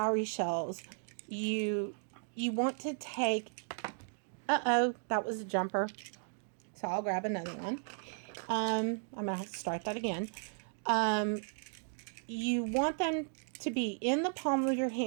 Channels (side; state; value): left; silent; 54 dB below the other